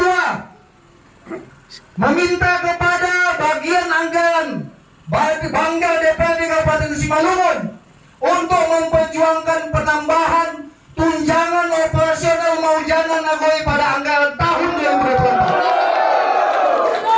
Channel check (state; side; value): identical; both; correlation 1.00